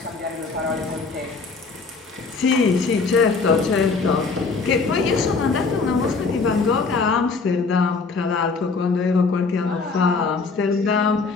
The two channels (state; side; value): quieter; right; 4.4 dB